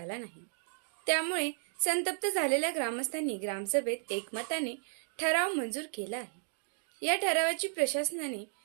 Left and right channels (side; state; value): left; silent; digital silence